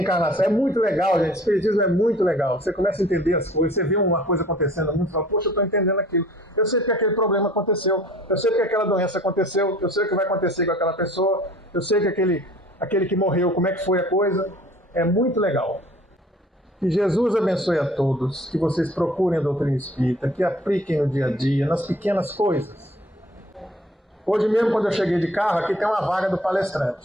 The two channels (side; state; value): both; normal; correlation 0.50